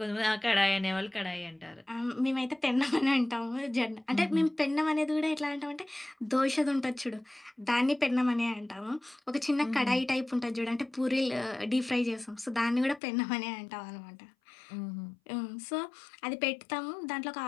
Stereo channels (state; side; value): drops out; right; at 13.0 s